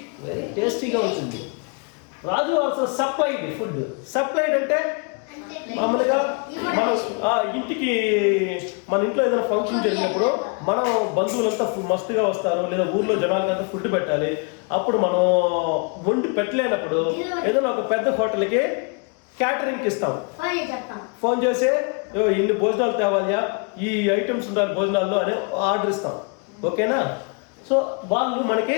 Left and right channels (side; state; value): right; quieter; 35.2 dB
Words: టేస్టీగా ఉంటుంది. రాజు ఆల్సో సప్లైడ్ ఫుడ్. సప్లైడ్ అంటే మామూలుగా మనం ఇంటికి మన ఇంట్లో ఏదైనా ఫంక్షన్ జరిగినప్పుడు మనం బంధువులంతా మస్తుగా వస్తారు, లేదా ఊర్లో జనాలకంతా ఫుడ్ పెట్టాలి. అప్పుడు మనం వండి పెట్టలేనప్పుడు ఏదైనా ఒక పెద్ద హోటల్కి క్యాటరింగ్కి ఇస్తాం. ఫోన్ చేసి ఇన్ని భోజనాలు తేవాలియా, ఈ ఐటమ్స్ ఉండాలి భోజనాల్లో అని ఆర్డర్ ఇస్తాం. ఓకేనా? సో వాళ్ళు మనకి